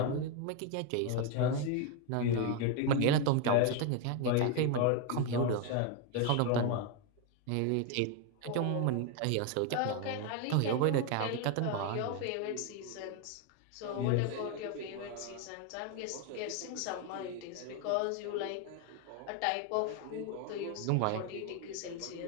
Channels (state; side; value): different; both; correlation 0.01